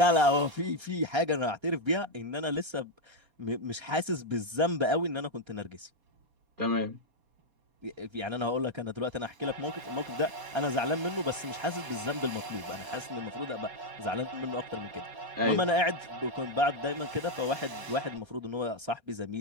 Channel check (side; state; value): left; late; 4.2 ms